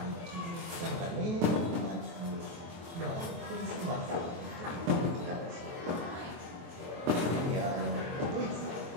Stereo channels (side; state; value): left; late; 23 ms